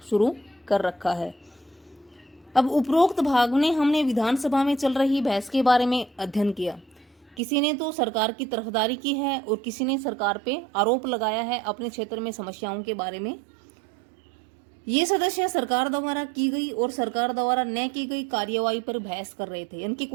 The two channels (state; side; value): drops out; left; at 7.4 s